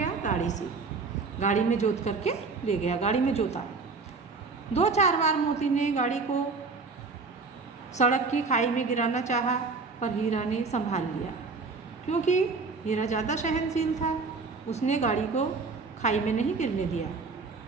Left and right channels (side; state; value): left; quieter; 4.3 dB